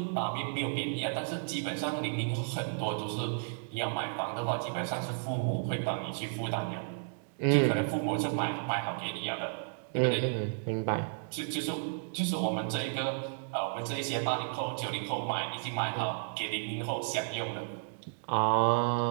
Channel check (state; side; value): silent; left; digital silence